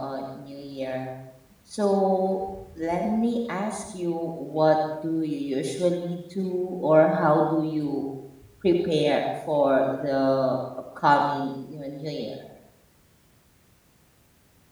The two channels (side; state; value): both; identical; correlation 1.00